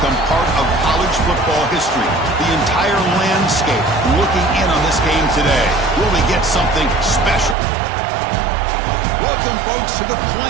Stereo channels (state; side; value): drops out; left; at 7.6 s